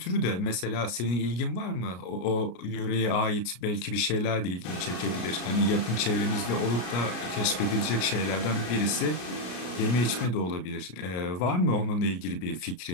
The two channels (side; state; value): right; late; 33 ms